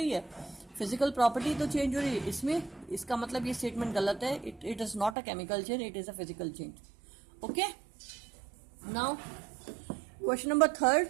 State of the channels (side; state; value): left; drops out; at 5.2 s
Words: है, फिजिकल प्रॉपर्टी तो चेंज हो रही है. इसमें इसका मतलब ये स्टेटमेंट गलत है. It is not a chemical change, it is a physical change. Okay, now question number third.